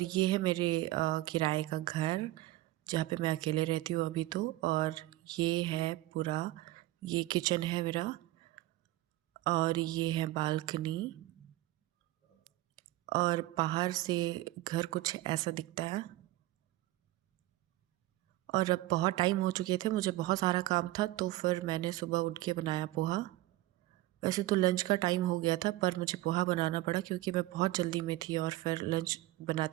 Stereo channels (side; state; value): left; quieter; 17.6 dB